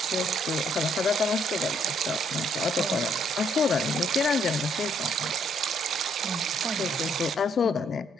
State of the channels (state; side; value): normal; both; correlation 0.69